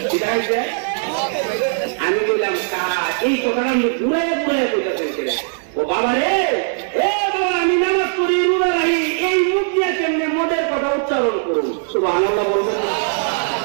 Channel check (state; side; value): silent; left; 66 dB below the other